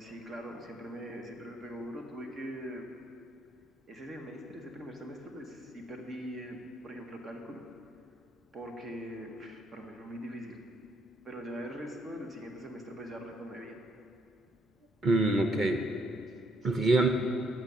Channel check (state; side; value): normal; both; correlation 0.71